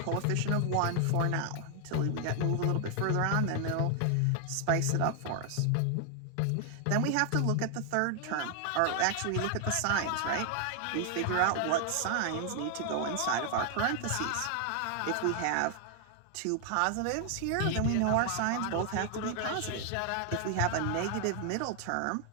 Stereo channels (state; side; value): different; both; correlation 0.00